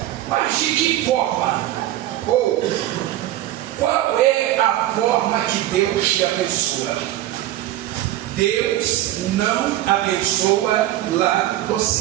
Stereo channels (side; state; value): left; quieter; 14.2 dB